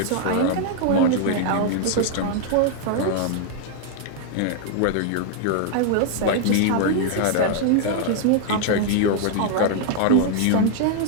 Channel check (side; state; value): both; different; correlation 0.00